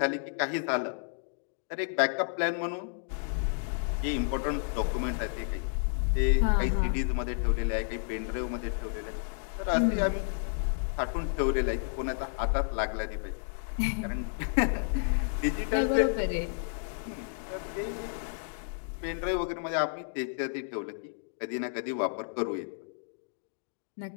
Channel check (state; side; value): silent; right; digital silence